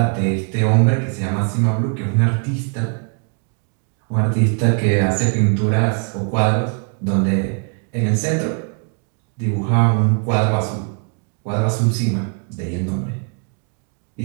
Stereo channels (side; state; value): left; quieter; 39.9 dB